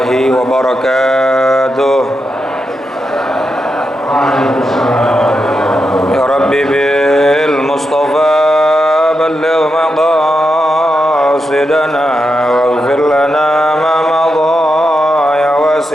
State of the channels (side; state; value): both; normal; correlation 0.86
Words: wabarakatuh. Ya Rabbi bil Mustafa balligh maqasidana waghfir lana ma madha ya